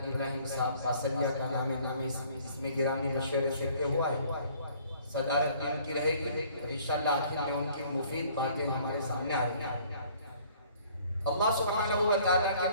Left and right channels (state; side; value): inverted; both; correlation -0.57